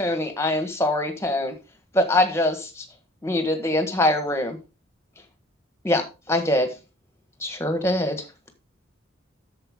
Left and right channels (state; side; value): normal; both; correlation 0.48